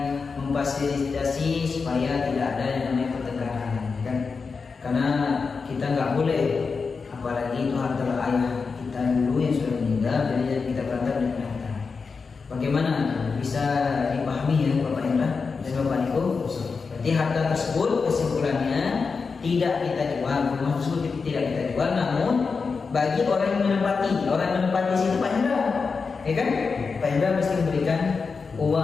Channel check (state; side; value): quieter; right; 4.9 dB